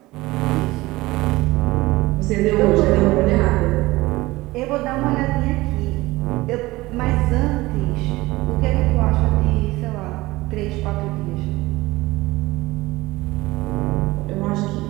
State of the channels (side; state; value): left; quieter; 19.7 dB